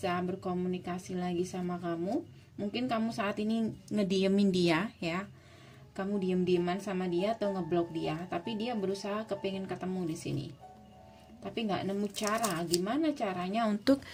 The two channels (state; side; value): identical; both; correlation 1.00